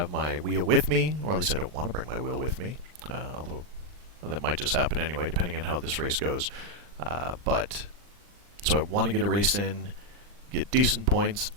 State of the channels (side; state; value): left; late; 39 ms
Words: my wheel with me, or at least I don't want to bring my wheel with me, although that might just happen anyway, depending on how this race goes. So I want to get a race in, get decent points,